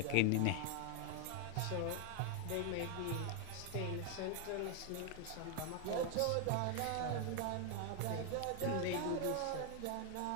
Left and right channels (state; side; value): different; both; correlation 0.00